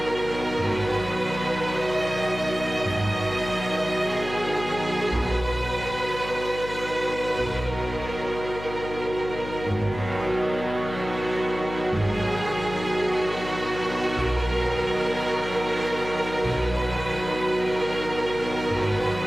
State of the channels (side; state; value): left; noise; hum, 11 dB below the sound